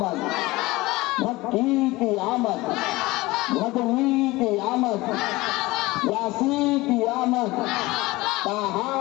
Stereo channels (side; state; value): right; quieter; 20.5 dB